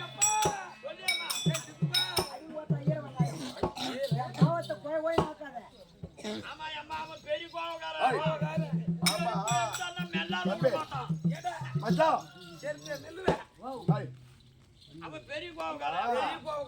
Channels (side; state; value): both; identical; correlation 1.00